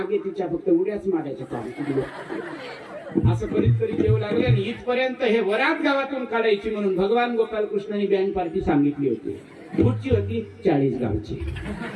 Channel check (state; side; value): identical; both; correlation 1.00